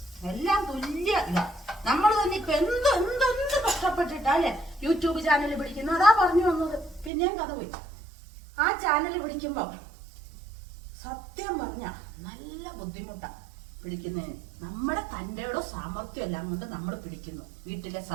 എല്ലാം തുല്യ ഇതാ. നമ്മൾ തന്നെ ഇപ്പൊ എന്ത് കഷ്ടപ്പെട്ടിട്ടാ അല്ലെ യൂട്യൂബ് ചാനൽ പിടിക്കുന്നു. അതാ പറഞ്ഞു വന്നത്. പിന്നെയും കഥ പോയി. ആ ചാനൽ പിടിക്കുമ്പോ സത്യം പറഞ്ഞ നല്ല ബുദ്ധിമുട്ടാ പിടിക്കുന്നതിന്. നമ്മുടെ തന്റെയോ സാമർത്ഥ്യം എല്ലാം കൊണ്ട് നമ്മൾ പിടിക്കുന്നു. വീട്ടിലെ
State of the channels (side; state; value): left; drops out; at 7.1 s